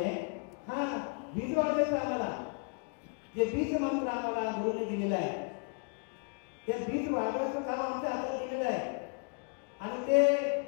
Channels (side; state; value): right; quieter; 37.8 dB